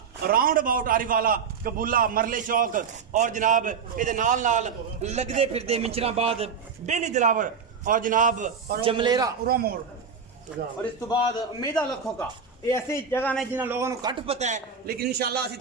राउंड अबाउट आरी वाला कबूला मरले चौक और जनाब ये नाल नाल लगते फिरते मिंचराबाद बेली दिलावर और जनाब जमलेरा मोड़ और इस तो बाद उम्मीदा लखों का ये ऐसी जगह ने जिन्हें लोगों को घट पता है लेकिन इंशाल्लाह असि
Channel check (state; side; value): quieter; left; 6.1 dB